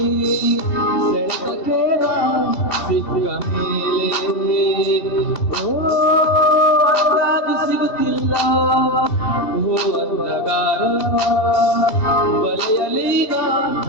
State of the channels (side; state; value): right; late; 3.1 ms